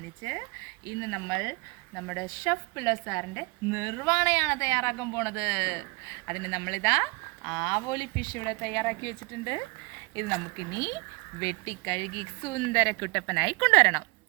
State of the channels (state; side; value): quieter; left; 26.8 dB